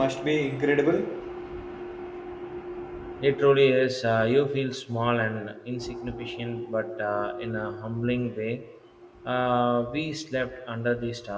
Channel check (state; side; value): identical; both; correlation 1.00